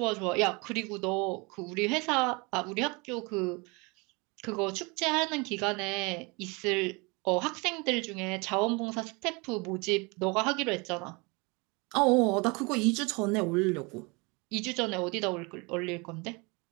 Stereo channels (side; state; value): left; quieter; 28.1 dB